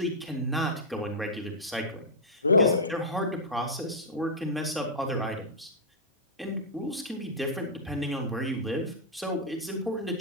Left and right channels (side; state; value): both; normal; correlation -0.09